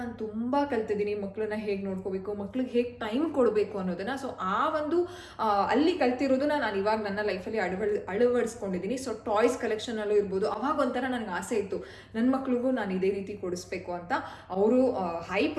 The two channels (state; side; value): identical; both; correlation 1.00